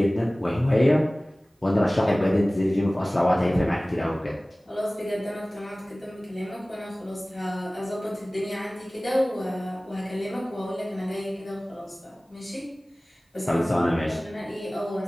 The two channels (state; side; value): normal; both; correlation 0.98